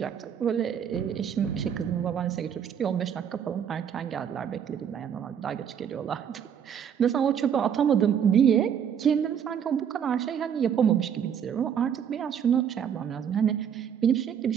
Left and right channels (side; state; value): left; quieter; 8.3 dB